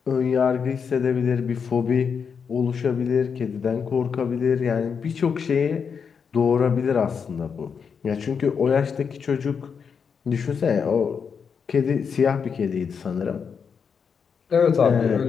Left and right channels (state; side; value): quieter; right; 6.4 dB